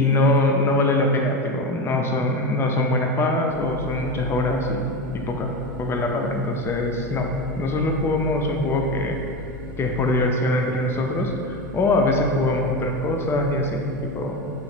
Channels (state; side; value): normal; both; correlation 0.20